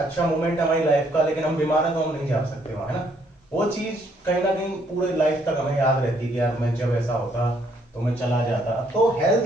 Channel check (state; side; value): normal; both; correlation 0.69